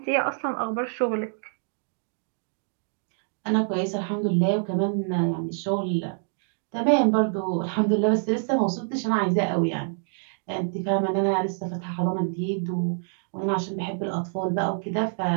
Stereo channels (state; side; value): silent; left; 61 dB below the other